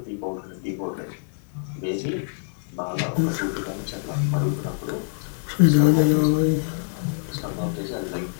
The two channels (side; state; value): right; silent; digital silence